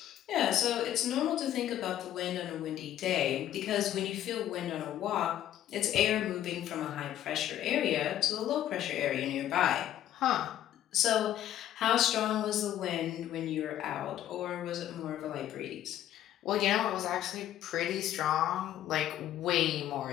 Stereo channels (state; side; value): quieter; right; 12.0 dB